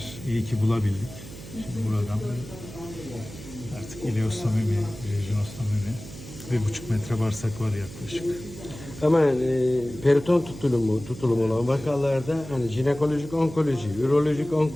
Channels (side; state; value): right; noise; hum, 14 dB below the sound